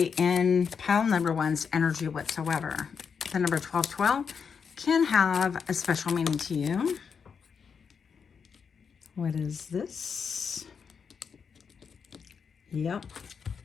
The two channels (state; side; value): quieter; right; 6.3 dB